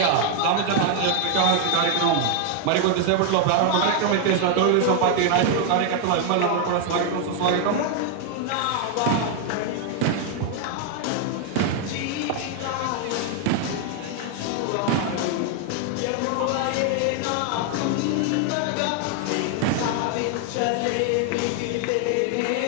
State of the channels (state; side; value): different; both; correlation 0.00